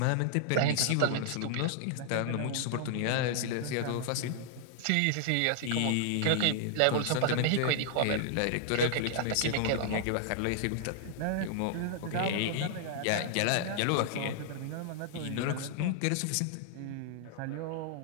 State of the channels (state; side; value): different; both; correlation -0.01